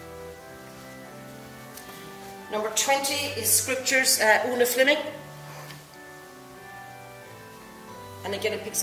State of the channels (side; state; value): both; identical; correlation 1.00